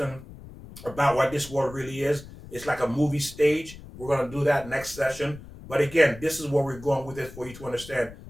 about what this world really is. It's like a movie stage. We're going to do that next session. But again, this is where we're going with it for you to understand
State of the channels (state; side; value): noise; left; rumble, 16 dB below the sound